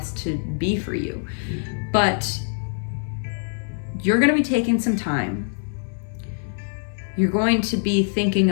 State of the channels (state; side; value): silent; right; digital silence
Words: to be for you. But you're going to be taking some time. You're going to be thinking